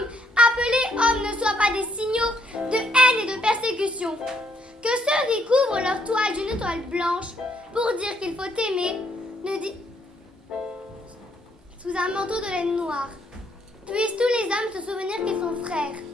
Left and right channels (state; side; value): normal; both; correlation 0.72